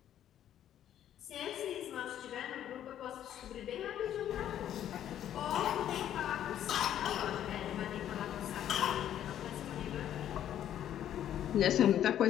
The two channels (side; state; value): right; quieter; 10.9 dB